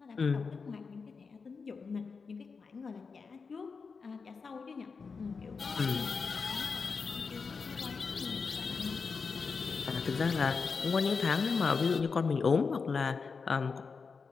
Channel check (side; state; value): right; quieter; 5.0 dB